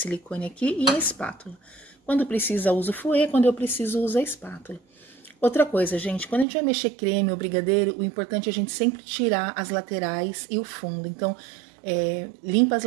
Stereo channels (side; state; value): left; drops out; at 6.5 s